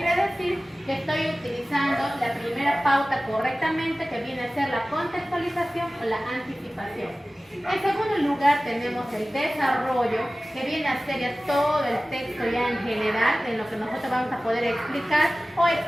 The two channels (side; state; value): both; normal; correlation 0.97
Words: decir? Que estoy utilizando la primera pauta correctamente, que viene a ser la contextualización o la anticipación. En segundo lugar tenemos el desarrollo, que viene a ser ya todo el texto ya en general, en lo que nosotros vamos a poder explicar o